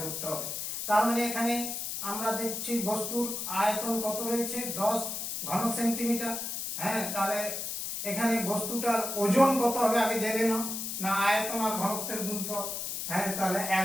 করতে হবে। তার মানে এখানে আমরা দেখছি বস্তুর আয়তন কত রয়েছে, 10 ঘন সেন্টিমিটার। হ্যাঁ, তাহলে এখানে বস্তুটার ওজন কত হবে আগে জেনে নাও, না আয়তন আর ঘনত্বের গুণফল। হ্যাঁ, তাহলে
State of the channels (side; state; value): left; noise; hiss, 4 dB below the sound